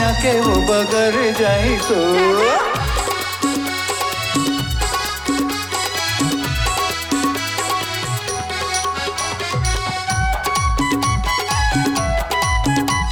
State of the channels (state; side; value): identical; both; correlation 1.00